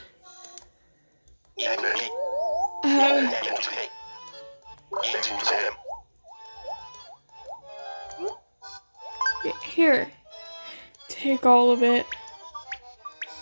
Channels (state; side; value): inverted; both; correlation -1.00